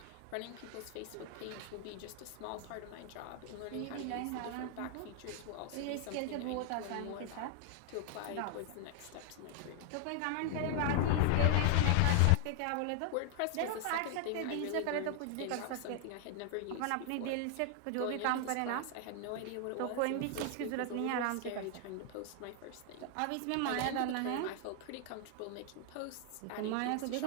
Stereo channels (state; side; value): different; both; correlation 0.00